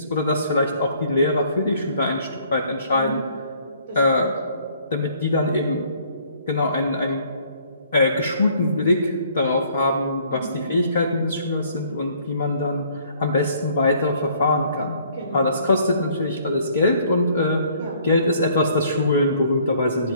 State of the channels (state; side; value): inverted; both; correlation -0.60